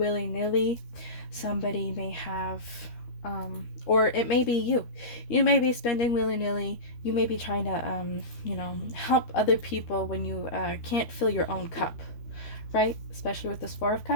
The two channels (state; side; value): late; right; 13 ms